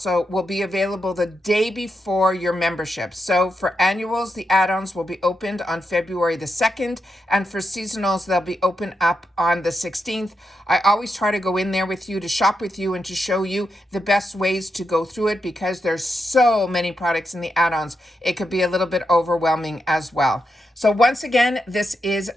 will be available the day before your membership. So for annuals, the add-ons will be opened on February the 2nd, and for seasonals, they'll be open up on the 16th. I always try to go in there with you to shop with you and to show you the best ways to go through it, because there's so many products in the add-ons. It could be a little bit overwhelming as well. So once again, this is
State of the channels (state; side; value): normal; both; correlation 0.85